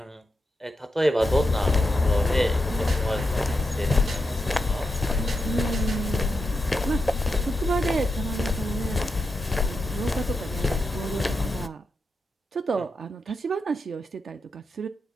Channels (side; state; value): both; normal; correlation 0.86